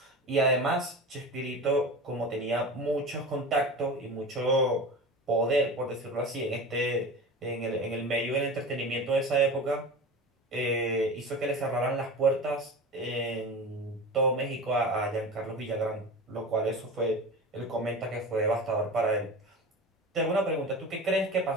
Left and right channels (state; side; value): normal; both; correlation 0.31